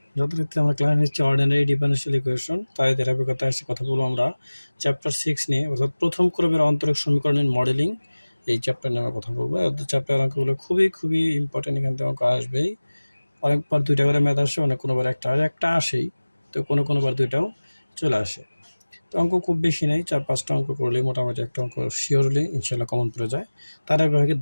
যথারীতি আমরা ক্লাস নিচ্ছি অর্ডিনারি ডিফারেনশিয়াল ইকুয়েশন। তাই ধারাবাহিকতায় এসে কথা বলবো আমরা চ্যাপ্টার 6 নিয়ে, অর্থাৎ প্রথম ক্রমের অন্তরক সমীকরণের মডেলিং। এই চ্যাপ্টার নিয়ে আমরা কথা বলবো। চ্যাপ্টার অঙ্কগুলো খুবই ইম্পর্টেন্ট, এখান থেকে অঙ্ক আসবেই। অনেকবার দুইটা করে ম্যাথ আসে, অনেক কোনোবার একটা আসেই, তো কোনোবার দুইটাও চলে আসে। তো অঙ্ক খুব বেশি নেই, 4-5টা অঙ্ক করলেই মোটামুটি একটা অঙ্ক শিওরলি ইনশাল্লাহ কমন পড়ে যায়। তার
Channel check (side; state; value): both; inverted; correlation -1.00